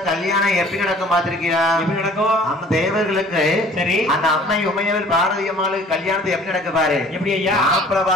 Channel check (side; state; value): both; normal; correlation 0.52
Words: கல்யாணம் எப்படி நடக்கும் பாத்திருக்கியா எப்படி நடக்கும் நம்ம தேவர்களுக்கு சரி அந்த அம்மை உமையவள் பார்வதி அம்மாளுக்கு கல்யாணத்தை எப்படி நடக்க பாரு எப்படி ஐயா மாப்பிள்ளை